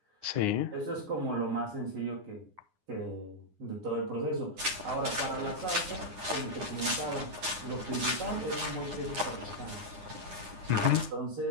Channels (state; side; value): late; left; 9.8 ms